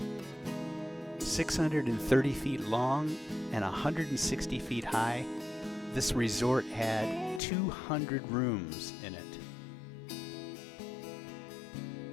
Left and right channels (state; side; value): drops out; right; at 7.4 s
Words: 630 feet long and 160 feet high, this resort had 200 rooms in it.